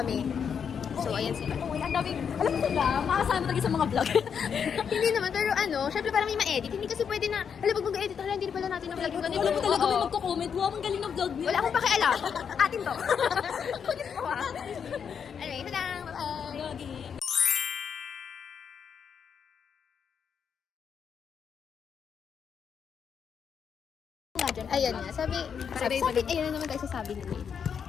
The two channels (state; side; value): quieter; right; 7.1 dB